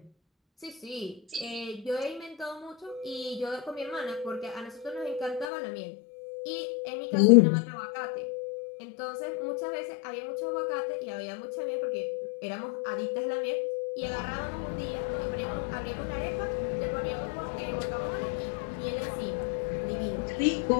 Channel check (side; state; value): right; drops out; at 5.5 s